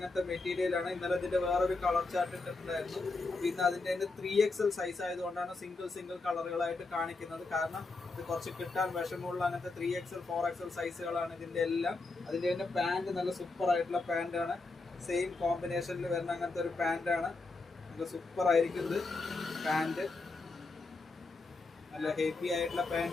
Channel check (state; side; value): quieter; right; 3.6 dB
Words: മെറ്റീരിയൽ ആണ്. ഇന്നലെ ഇതിന്റെ വേറൊരു കളർ ചാർട്ട് ഇട്ടിട്ടുണ്ടായിരുന്നു. പിന്നെ അതിന്റെ 3XL സൈസ് ആയതുകൊണ്ടാണ് സിംഗിൾ കളറുകളായിട്ട് കാണിക്കുന്നത്. കാരണം ഇത് കുറച്ച് കിട്ടാൻ വിഷമമുള്ള അങ്ങനത്തെ 3XL 4XL സൈസുകളാണ് ഇതിന്റെ എല്ലാം. അതിന്റെ തന്നെ പാന്റ് നല്ല സൂപ്പർ ആയിട്ടുള്ള പാന്റ് ആണ്. സെയിം കോമ്പിനേഷനിൽ വരുന്ന അങ്ങനത്തെ ഒരു പാന്റ് ആണ്. നല്ല സൂപ്പർ ആയിരിക്കുന്നത് പാന്റ്. നല്ല ഹെവി ആയിട്ടുള്ള